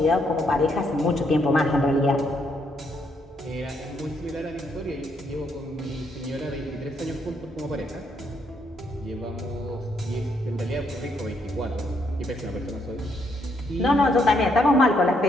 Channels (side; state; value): both; normal; correlation 0.74